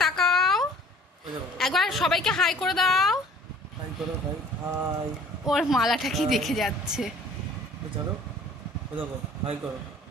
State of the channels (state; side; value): normal; both; correlation 0.51